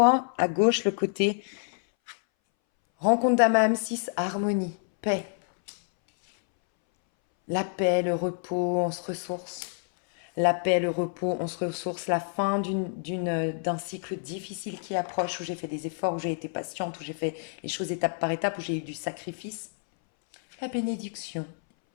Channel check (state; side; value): silent; right; 59 dB below the other